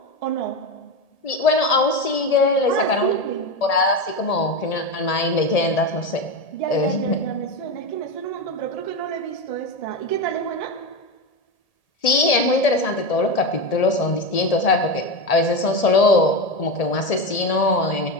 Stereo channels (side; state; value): right; late; 1.8 ms